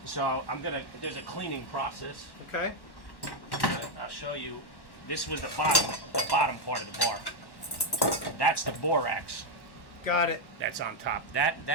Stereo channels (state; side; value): late; right; 1.1 ms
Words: So there's a cleaning process. Okay. I'll show you. This was the bottom part of the bar. That's the borax. Got it. That's on top.